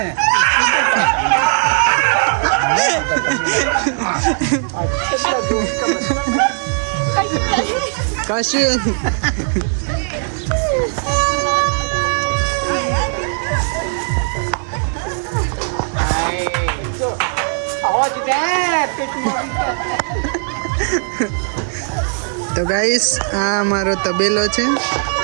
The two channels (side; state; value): left; silent; digital silence